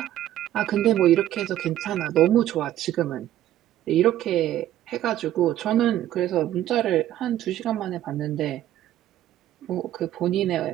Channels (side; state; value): left; quieter; 12.8 dB